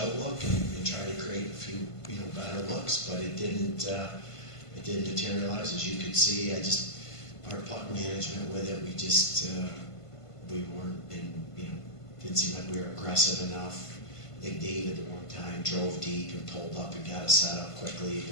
and try to create a few, you know, better looks, but it didn't materialize. As you could see, our puck management with it, we weren't didn't seem like we were aggressive enough. Big David at one time drove deep and pulled up and got us set up quickly,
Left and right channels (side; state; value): right; late; 1.5 ms